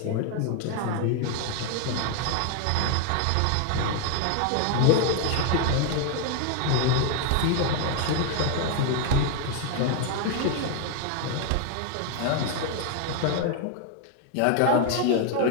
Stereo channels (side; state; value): both; different; correlation 0.00